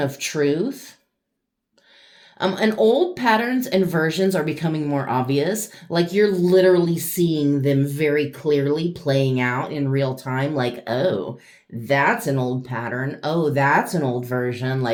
truth. And old patterns and versions are becoming more obvious. Like you're literally seeing them very clearly playing out in real time. Like, oh, that's an old pattern. Oh, that's an old version.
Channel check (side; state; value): both; identical; correlation 1.00